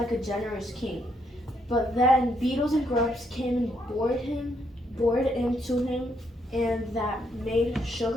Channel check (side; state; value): both; normal; correlation 0.74